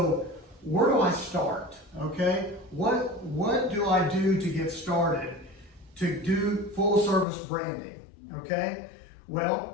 where do I start? Okay, what do I do to get started to do full service branding? Okay,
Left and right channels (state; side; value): drops out; right; at 7.2 s